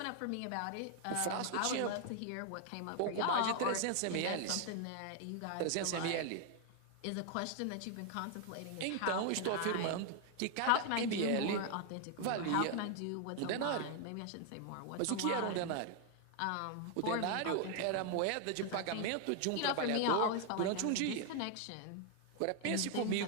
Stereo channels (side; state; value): both; different; correlation 0.00